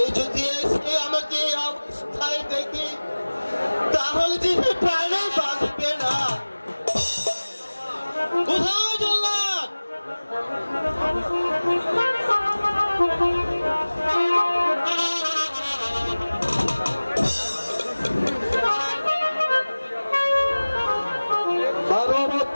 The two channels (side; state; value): both; inverted; correlation -1.00